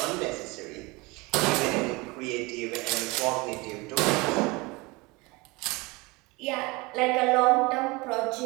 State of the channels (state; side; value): quieter; left; 24.7 dB